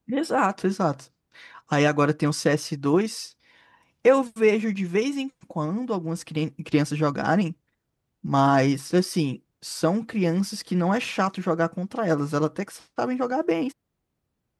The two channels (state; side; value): identical; both; correlation 1.00